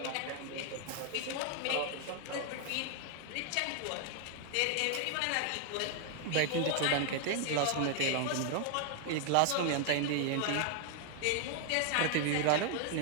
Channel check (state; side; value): different; both; correlation 0.00